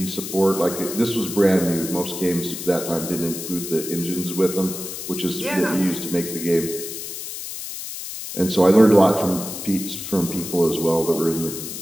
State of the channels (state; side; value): noise; left; hiss, 8 dB below the sound